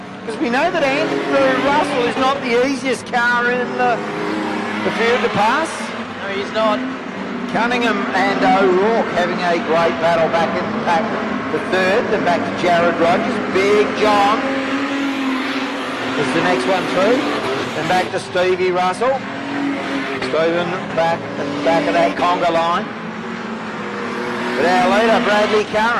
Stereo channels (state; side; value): identical; both; correlation 1.00